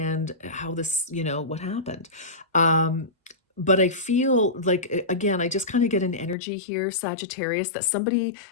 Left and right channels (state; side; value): drops out; right; at 6.4 s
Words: how this, you know, what happened. Um, but I feel like, again, I just kind of get an energy here, Sagittarius, that somebody,